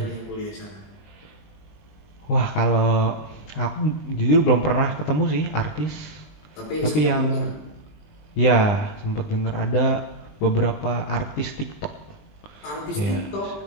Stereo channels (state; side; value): late; right; 20 ms